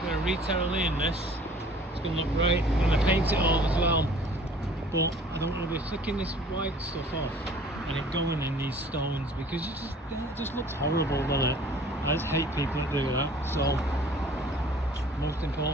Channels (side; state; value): both; normal; correlation 0.51